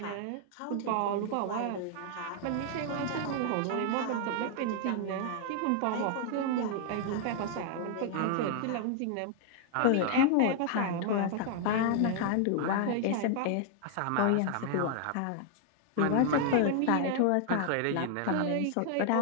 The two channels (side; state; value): both; different; correlation 0.00